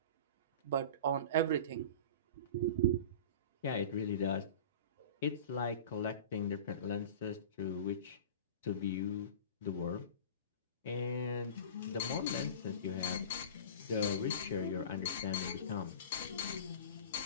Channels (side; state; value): both; inverted; correlation -0.35